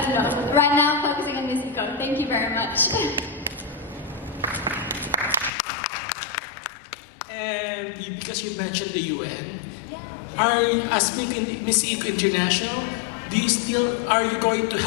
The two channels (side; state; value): right; drops out; at 5.5 s